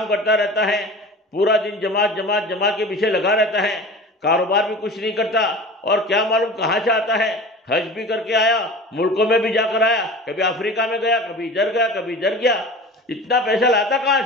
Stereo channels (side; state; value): both; normal; correlation 0.36